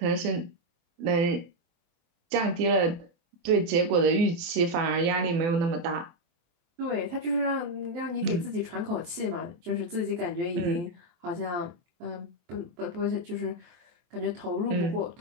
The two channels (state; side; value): late; left; 23 ms